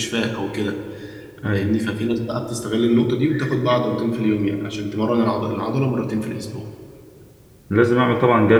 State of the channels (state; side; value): identical; both; correlation 1.00